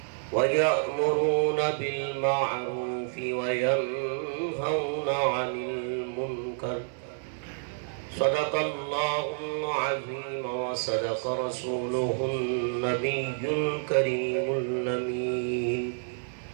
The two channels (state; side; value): silent; left; digital silence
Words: ويأمرون بالمعروف وينهون عن المنكر. صدق الله العظيم وصدق رسوله النبي الكريم الأمين.